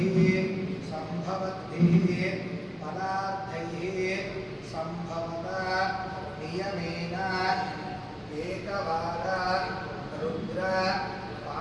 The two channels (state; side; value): identical; both; correlation 1.00